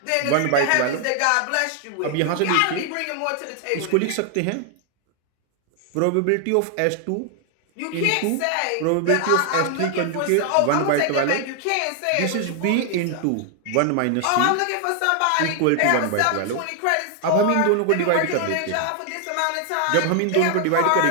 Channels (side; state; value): both; different; correlation 0.00